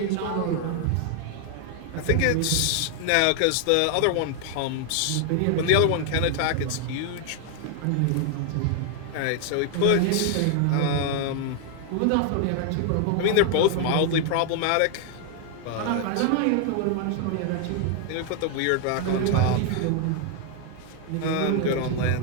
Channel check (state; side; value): different; both; correlation 0.00